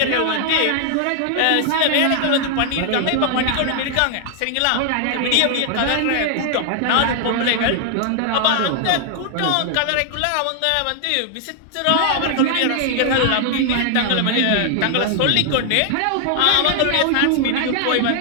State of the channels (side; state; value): both; different; correlation 0.00